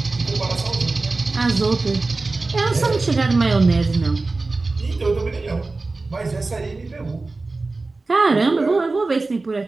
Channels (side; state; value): left; quieter; 3.5 dB